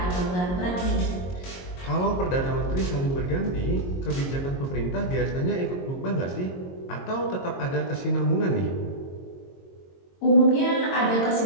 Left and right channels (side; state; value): right; late; 22 ms